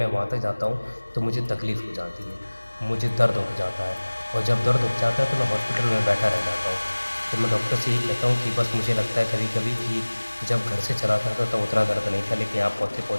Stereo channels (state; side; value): inverted; both; correlation -1.00